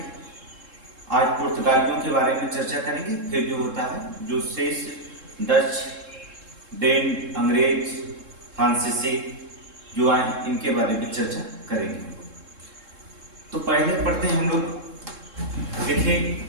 आज पुर्तगालियों के बारे में चर्चा करेंगे। फिर जो होता है जो शेष डच, डेन, अंग्रेज, फ्रांसीसी जो आए इनके बारे में चर्चा करेंगे। तो पहले पढ़ते हैं हम लोग। देखिए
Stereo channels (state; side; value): late; left; 3.7 ms